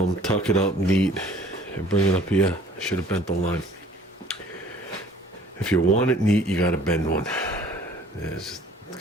tuck it up neat, and bring it up here. I should have bent the line. If you want it neat, you gotta bend one. There's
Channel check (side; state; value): both; normal; correlation 0.53